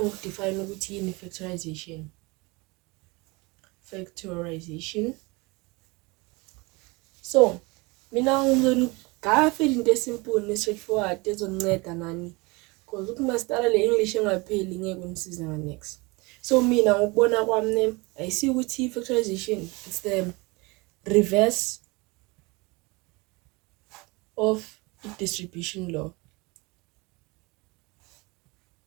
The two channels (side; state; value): left; quieter; 25.8 dB